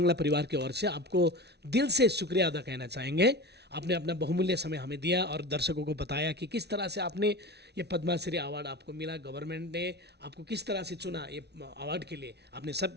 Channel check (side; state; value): left; late; 0.49 ms